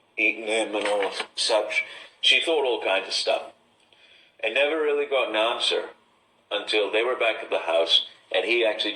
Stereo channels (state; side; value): identical; both; correlation 1.00